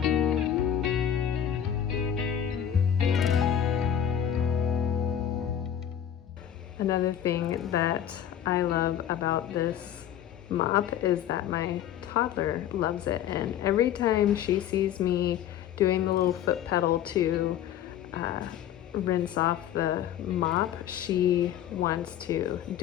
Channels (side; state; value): right; quieter; 10.0 dB